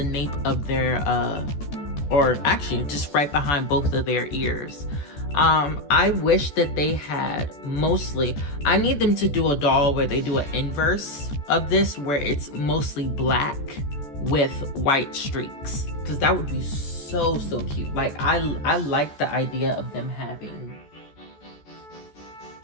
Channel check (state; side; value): late; right; 14 ms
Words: nape of their or actually just right behind both of their ears. I wish that they had mostly, I need them to do a doll where they do an inverse of this, where it's mostly black with white streaks, because that would be so cute. Like I like the idea of them having,